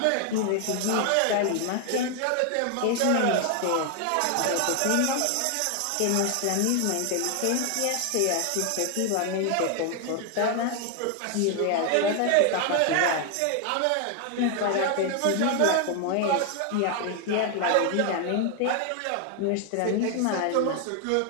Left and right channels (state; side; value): different; both; correlation 0.00